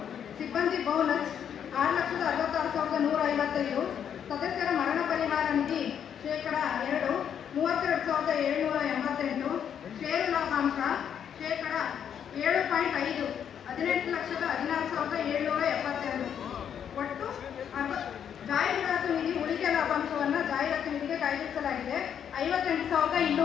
ಸಿಬ್ಬಂದಿ ಬೋನಸ್ 6,66,155. ಸದಸ್ಯರ ಮರಣ ಪರಿಹಾರ ನಿಧಿ 2%, 32,788. ಷೇರು ಲಾಭಾಂಶ 7.5%, 18,16,772. ಒಟ್ಟು ಜಾಹೀರಾತು ನಿಧಿ ಉಳಿಕೆ ಲಾಭಾಂಶವನ್ನು ಜಾಹೀರಾತು ನಿಧಿಗೆ ಕಾಯ್ದಿರಿಸಲಾಗಿದೆ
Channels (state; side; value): quieter; right; 8.6 dB